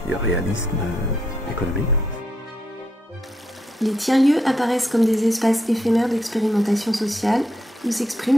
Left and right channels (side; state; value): both; normal; correlation 0.79